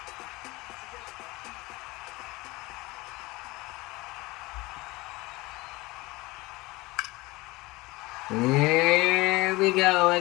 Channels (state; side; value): quieter; right; 21.8 dB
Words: Here we go